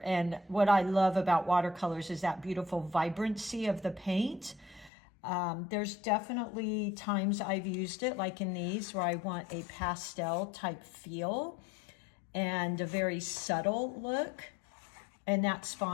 And what I love about watercolors is that beautiful vibrancy of the paint. There's definitely times I've used it, like in these, where I want a pastel type feel and a very subtle look, and that's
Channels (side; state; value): right; drops out; at 4.9 s